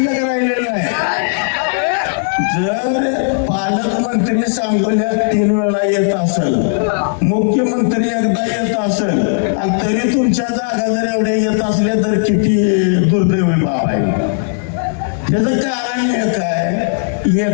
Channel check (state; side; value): silent; right; 63 dB below the other